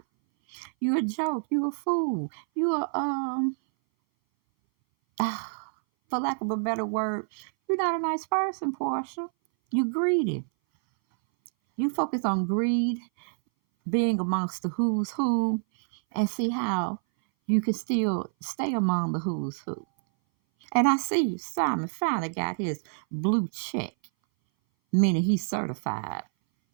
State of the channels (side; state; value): left; silent; 58 dB below the other